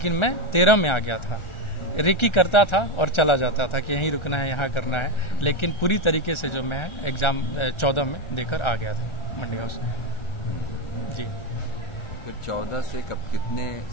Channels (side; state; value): right; late; 1.4 ms